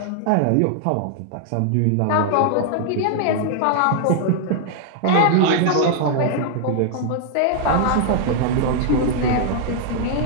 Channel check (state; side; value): different; both; correlation -0.01